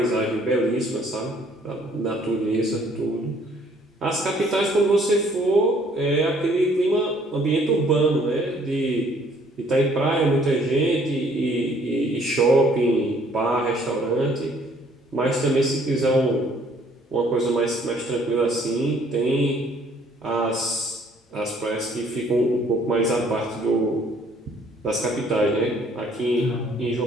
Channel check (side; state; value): both; normal; correlation 0.61